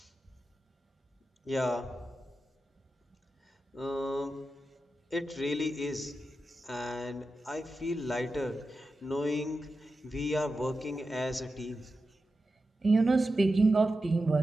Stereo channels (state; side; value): normal; both; correlation 0.91